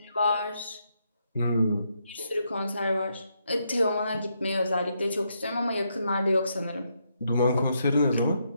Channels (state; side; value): inverted; both; correlation -0.78